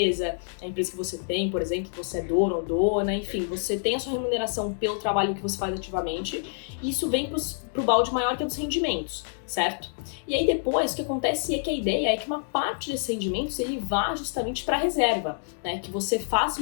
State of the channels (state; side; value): silent; right; 60 dB below the other